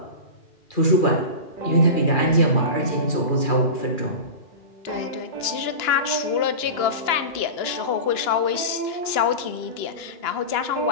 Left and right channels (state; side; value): late; right; 2.9 ms